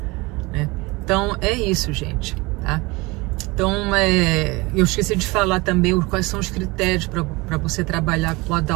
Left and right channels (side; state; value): left; quieter; 23.9 dB